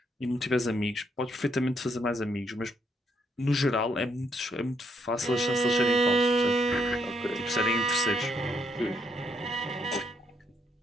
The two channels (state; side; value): normal; both; correlation 0.74